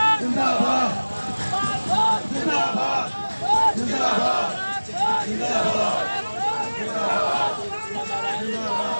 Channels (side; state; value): both; inverted; correlation -1.00